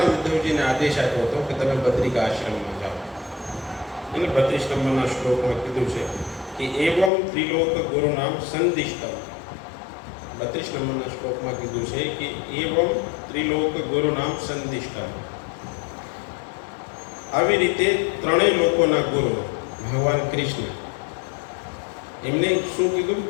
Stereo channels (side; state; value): right; drops out; at 7.1 s